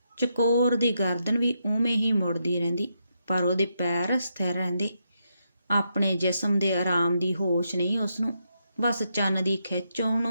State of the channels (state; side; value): inverted; both; correlation -0.81